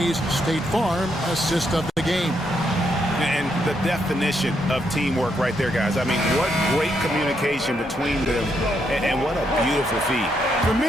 State Farm assist of the game. And the definition of teamwork right there, guys. I mean, what great communication between them, and what a beautiful feed. For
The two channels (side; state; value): both; normal; correlation 0.77